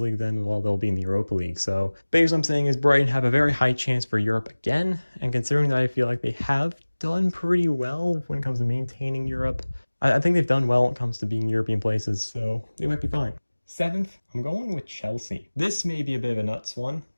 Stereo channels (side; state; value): both; inverted; correlation -1.00